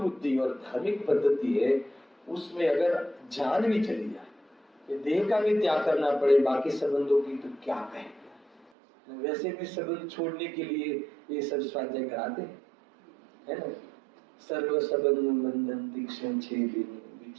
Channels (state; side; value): drops out; left; at 8.7 s